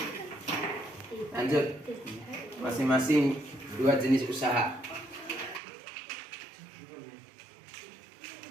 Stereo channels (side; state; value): left; drops out; at 5.6 s